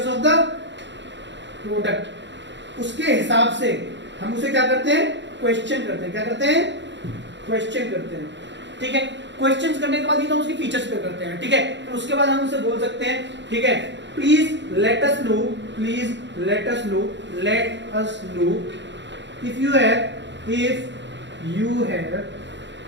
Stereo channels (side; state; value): left; late; 0.52 ms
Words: ऑफ द प्रोडक्ट, उसके हिसाब से हम उसे क्या करते हैं, क्वेश्चन करते हैं। क्या करते हैं, क्वेश्चन करते हैं, ठीक है। क्वेश्चंस करने के बाद ही तो उसकी फीचर्स पे करते हैं, ठीक है। फिर उसके बाद हम उसे बोल सकते हैं, ठीक है, please let us no if you have